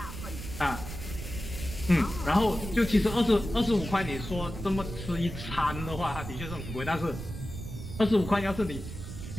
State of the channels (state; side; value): noise; right; rumble, 9 dB below the sound